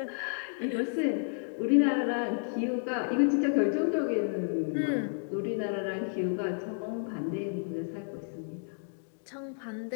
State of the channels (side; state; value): right; silent; digital silence